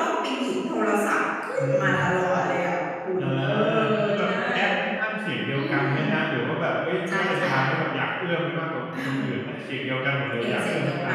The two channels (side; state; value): both; identical; correlation 1.00